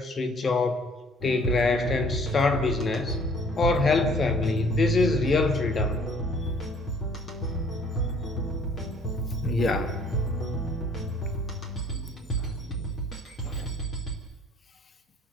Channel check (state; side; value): normal; both; correlation 0.56